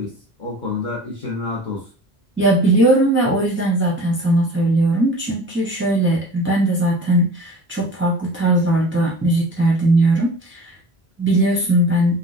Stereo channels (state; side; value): normal; both; correlation 0.41